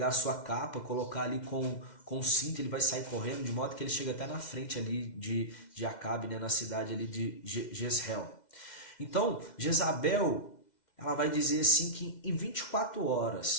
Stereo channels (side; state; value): right; late; 2.1 ms